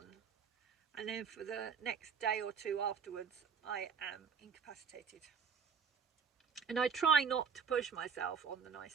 and then for the next day or two afterwards I am incapacitated. And I try not to push myself on the nice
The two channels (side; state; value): left; quieter; 6.2 dB